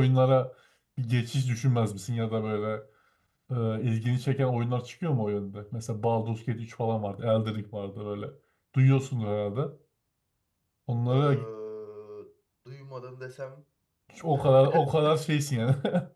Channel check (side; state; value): both; identical; correlation 1.00